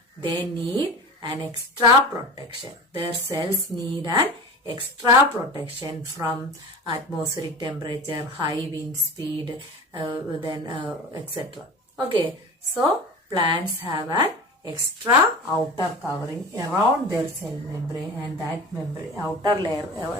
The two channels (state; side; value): normal; both; correlation 0.33